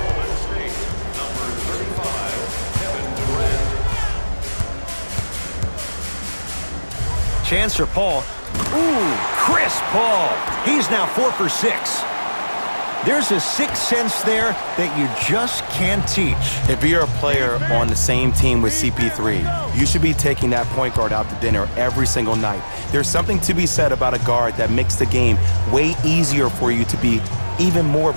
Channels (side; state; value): both; inverted; correlation -1.00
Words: Chance for Paul. Ooh, Chris Paul. He's now 4 for 6. There's a sixth sense there that you just can't teach. If you're a player on the same team with CP3, you should be taking that point guard out to dinner every single night. There's something to be said about a guard that makes the game way easier for you to be even more of